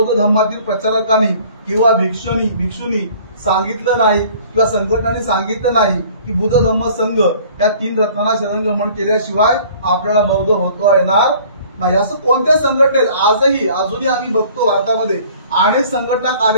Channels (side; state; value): both; inverted; correlation -0.51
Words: धर्मातील प्रचारकांनी किंवा भिक्षुनी सांगितलं नाही किंवा संघटनांनी सांगितलं नाही की बुद्ध धम्म संघ या 3 रत्नांना शरणगमन केल्याशिवाय आपल्याला बौद्ध होता येणार नाही. असं कोणत्या संघटनेत अजूनही आम्ही बघतो भारतामध्ये अनेक संघटना